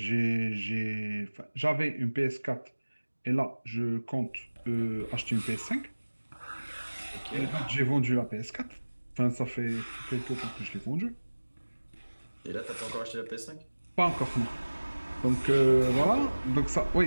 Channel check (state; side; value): inverted; both; correlation -1.00